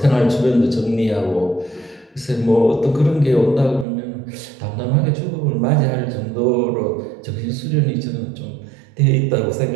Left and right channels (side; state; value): left; drops out; at 3.9 s